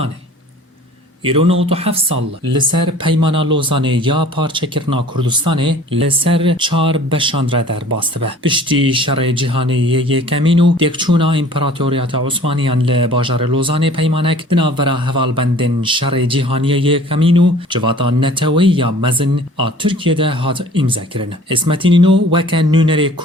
îro 97 sal li ser peymana Lozanê ya parçekirina Kurdistanê li ser çar beşan re derbas dibe. Piştî şerê cîhanê yê yêkemîn û têkçûna İmparatoriyeta Osmaniyan li bajarê Lozanê peymanek di navbera hevalbendên şerê cîhaniyê yêkemîn û civata netewî ya mezin a Tirkiyê de hat îmzekirin. İsmet İnönü weke nûnerê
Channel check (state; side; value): normal; both; correlation 0.49